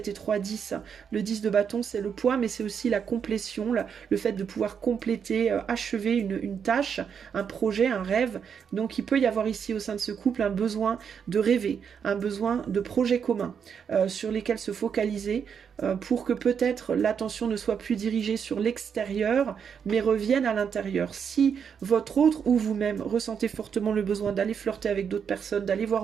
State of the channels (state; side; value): quieter; left; 7.1 dB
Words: et 3, 10. Le 10 de bâton, c'est le poids, mais c'est aussi la complétion, le fait de pouvoir compléter, achever une tâche, un projet, un rêve. Donc il peut y avoir ici au sein de ce couple un besoin de rêver, un besoin de projet commun sur lesquels se focaliser, pour que peut-être l'attention ne soit plus dirigée sur l'extérieur, mais revienne à l'intérieur. Si votre autre ou vous-même ressentez fortement le besoin d'aller flirter avec d'autres personnes, d'aller voir